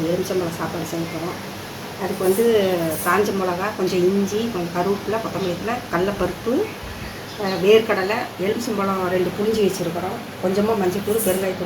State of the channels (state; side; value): identical; both; correlation 1.00